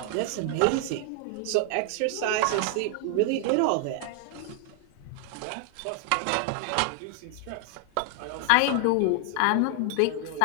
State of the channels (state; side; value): different; both; correlation 0.00